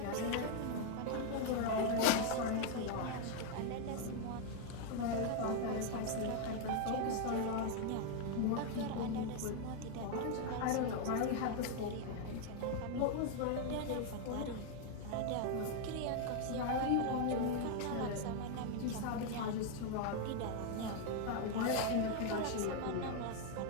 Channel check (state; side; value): different; both; correlation 0.00